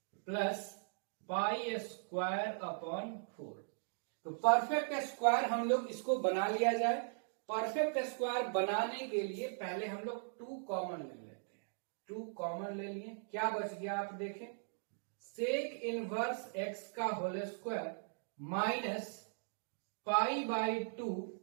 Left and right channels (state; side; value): silent; left; digital silence